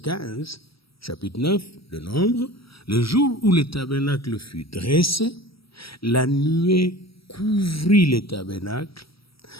chapitre 9 de Nombre, le jour où le tabernacle fut dressé, la nuée couvrit le tabernacle,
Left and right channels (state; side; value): late; right; 0.75 ms